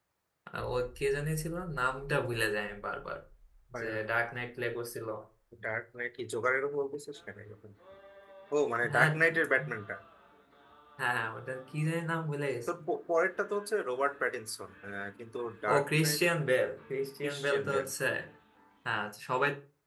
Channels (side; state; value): both; identical; correlation 1.00